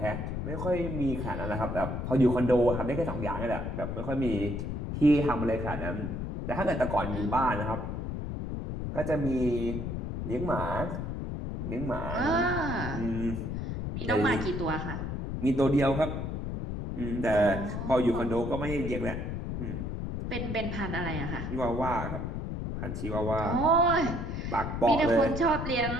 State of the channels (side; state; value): left; noise; rumble, 4 dB below the sound